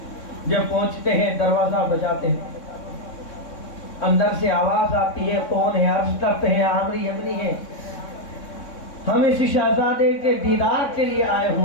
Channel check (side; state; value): right; late; 3.6 ms